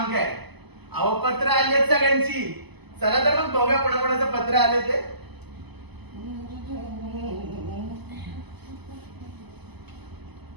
काय. अहो पत्र आली आहेत सगळ्यांची, चला तर मग बघूया कोणाकोणाचं पत्र आले ते.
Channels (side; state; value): left; late; 0.99 ms